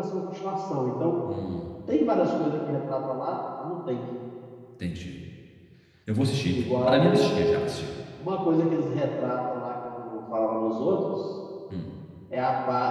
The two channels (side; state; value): both; identical; correlation 1.00